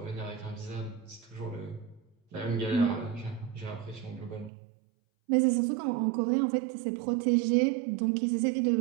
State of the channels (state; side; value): drops out; left; at 4.5 s